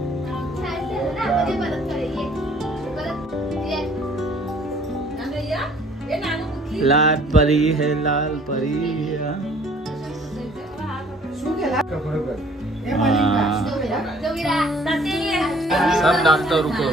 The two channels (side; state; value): both; normal; correlation 0.56